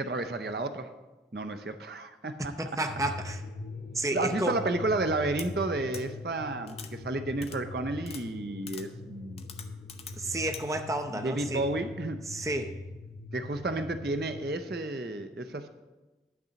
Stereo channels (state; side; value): normal; both; correlation 0.47